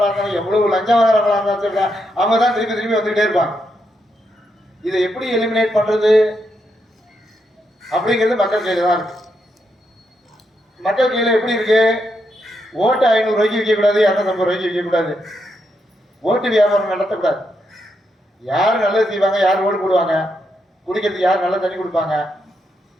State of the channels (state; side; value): normal; both; correlation 0.81